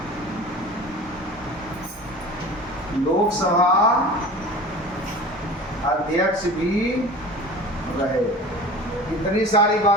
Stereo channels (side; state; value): both; normal; correlation 0.38